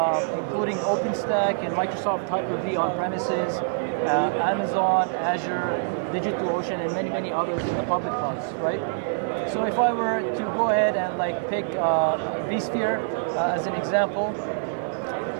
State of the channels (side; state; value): left; silent; digital silence